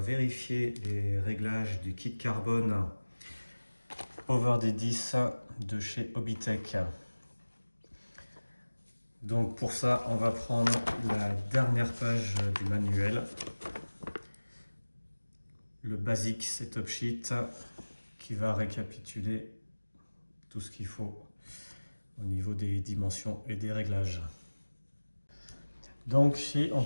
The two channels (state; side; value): inverted; both; correlation -1.00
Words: les réglages du kit carbone Over D10 de chez Hobbytech. Donc pour ça, on va prendre la dernière page du manuel, le basic setup sheet qui va récapituler tout ce qu'il faut au niveau des dimensions et des réglages. Donc ici, on